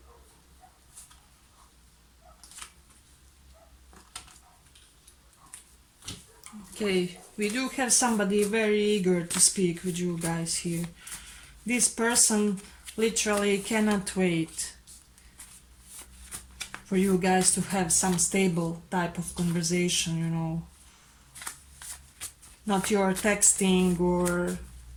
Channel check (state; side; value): identical; both; correlation 1.00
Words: Okay, we do have somebody very eager to speak with you guys here. This person literally cannot wait for you guys to have some stable type of conversation, you know. Not your texting or